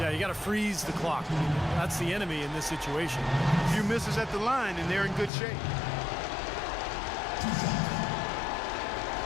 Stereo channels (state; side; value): drops out; right; at 5.3 s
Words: you got to freeze the clock. That's the enemy in this situation. A few misses at the line, and they're in good shape.